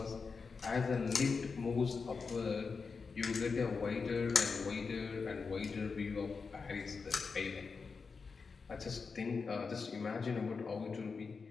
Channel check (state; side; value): quieter; right; 5.0 dB